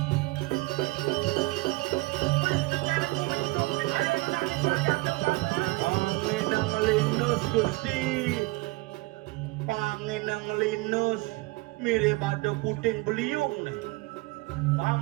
Panginang linus Gusti. Panginang linus mirip ada puting beliung nih.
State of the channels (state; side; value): quieter; left; 23.1 dB